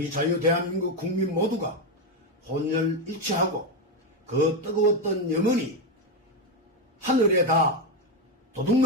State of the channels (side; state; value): both; normal; correlation 0.08